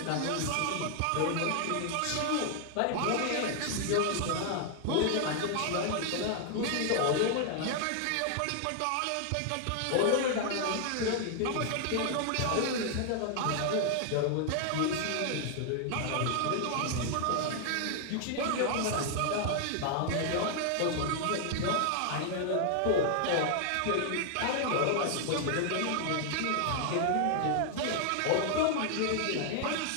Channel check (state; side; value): different; both; correlation 0.00